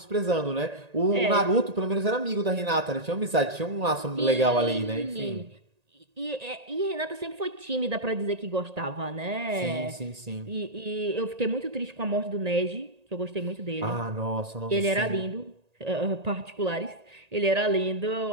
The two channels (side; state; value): left; late; 1.8 ms